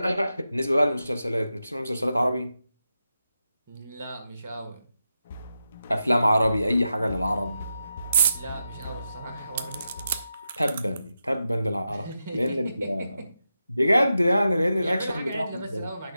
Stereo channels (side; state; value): both; inverted; correlation -0.88